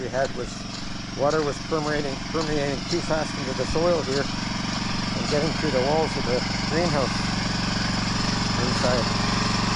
had was water was permeating too fast into the soil here and getting through the walls of the greenhouse inside.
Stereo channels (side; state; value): both; identical; correlation 1.00